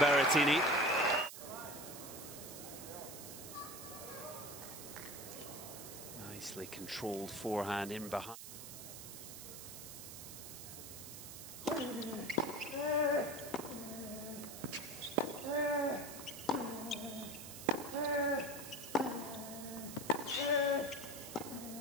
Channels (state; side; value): noise; right; hiss, 11 dB below the sound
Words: Berrettini. Nicely controlled forehand in behind.